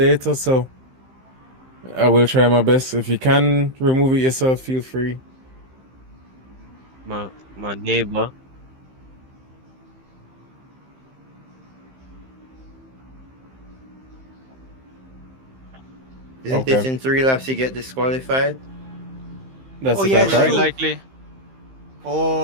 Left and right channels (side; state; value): left; late; 15 ms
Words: so I will try my best. If you can remove it yourself, feel free. My neighbor. Isn't Okay. it in 3 laps you get disqualified? That's Oh, the yeah, top, it's right? true. likely.